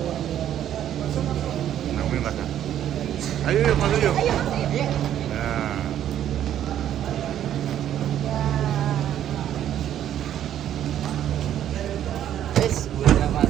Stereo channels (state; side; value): quieter; left; 10.9 dB